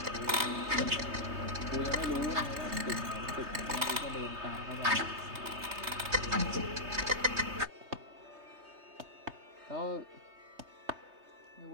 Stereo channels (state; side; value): late; left; 3.3 ms